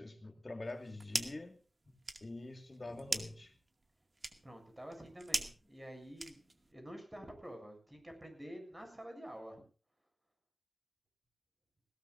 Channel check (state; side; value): normal; both; correlation 0.97